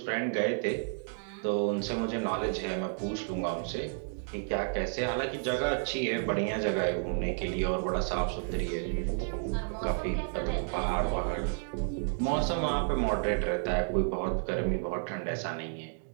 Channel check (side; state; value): left; silent; digital silence